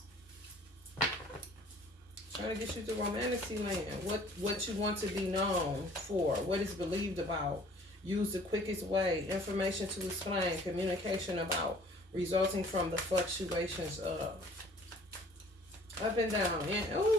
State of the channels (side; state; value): both; normal; correlation 0.53